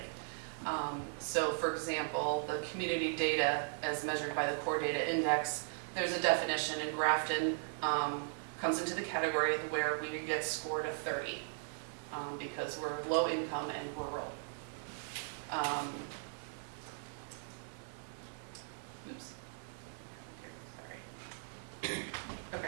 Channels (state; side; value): silent; left; digital silence